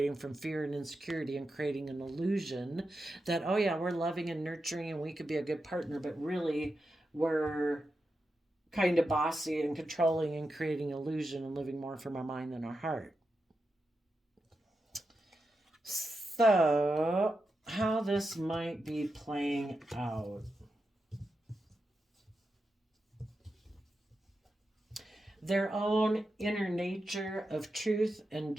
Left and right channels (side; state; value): both; normal; correlation 0.89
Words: from fear and insecurity and creating an illusion that, oh yeah, we're loving and nurturing and we could be a good partner, but really we're kind of bossy and controlling and creating illusion and living more from our mind than our heart. So, how this might be playing out. Their own inner nature of truth and